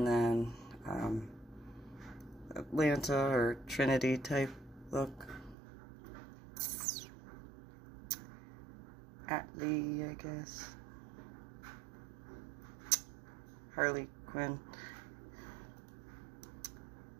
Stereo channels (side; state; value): left; drops out; at 5.6 s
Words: then Atlanta or Trinity type look. Atlee, I guess. Harley Quinn.